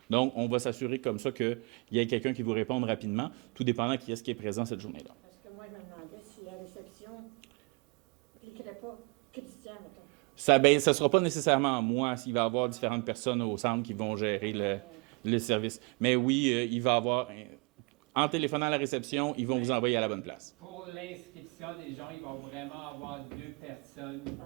Donc, on va s'assurer comme ça qu'il y ait quelqu'un qui vous réponde rapidement, tout dépendant qui est-ce qui est présent cette journée-là. Parce que moi, je me demandais si la réception ne cliquerait pas Christian, mettons. Ça ne sera pas nécessairement moi s'il va y avoir différentes personnes au centre qui vont gérer le service. Mais oui, il va y avoir... En téléphonant à la réception, ils vont vous envoyer à la bonne place. Pour l'inscription des gens, ils vont vraiment avoir 2 personnes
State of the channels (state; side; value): quieter; left; 30.2 dB